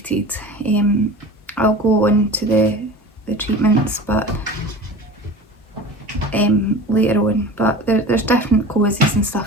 I'll go on to the treatments, but later on. But there's different causes and stuff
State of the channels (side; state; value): both; normal; correlation 0.36